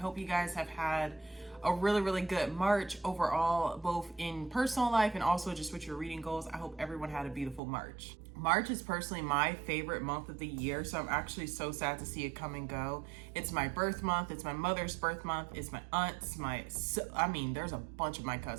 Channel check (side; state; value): left; drops out; at 7.6 s